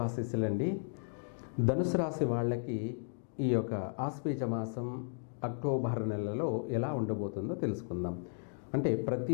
ధనుసు రాశి వాళ్ళకి ఈ యొక్క ఆశ్వీజ మాసం అక్టోబర్ నెలలో ఎలా ఉండబోతుందో తెలుసుకుందాం. అంటే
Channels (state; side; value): silent; right; digital silence